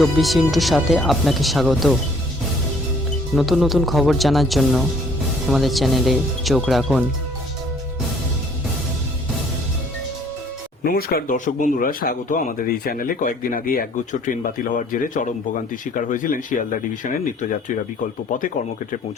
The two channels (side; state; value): both; normal; correlation 0.59